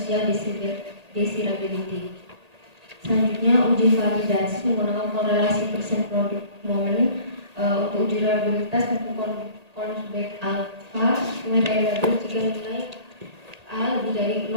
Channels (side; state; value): left; late; 1.8 ms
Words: desirability. Selanjutnya, uji validasi menggunakan korelasi persen product moment. Untuk uji reliabilitas menggunakan Consback alpha dengan variabel jika nilai A lebih dari